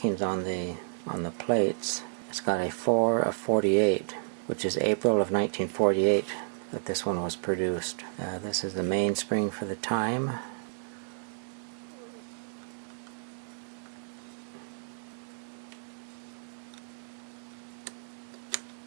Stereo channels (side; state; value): left; silent; digital silence